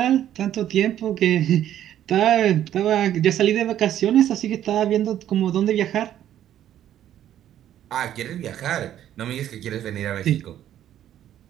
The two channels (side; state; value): left; quieter; 11.3 dB